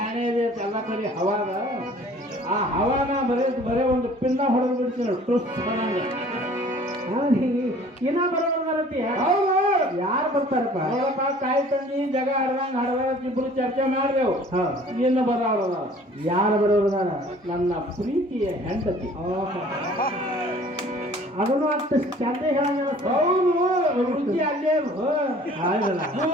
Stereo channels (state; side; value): normal; both; correlation 0.51